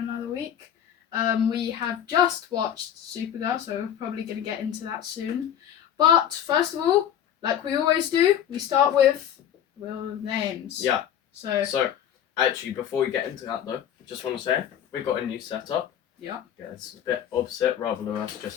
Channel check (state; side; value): quieter; right; 9.8 dB